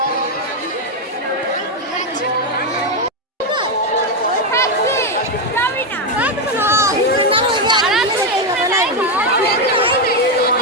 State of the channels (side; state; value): both; normal; correlation 0.06